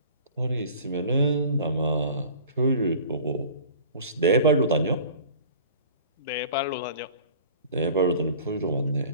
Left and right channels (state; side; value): inverted; both; correlation -0.45